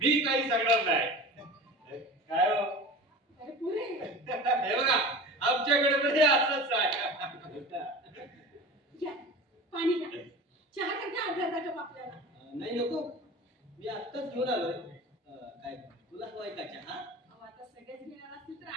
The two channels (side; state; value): both; normal; correlation 0.35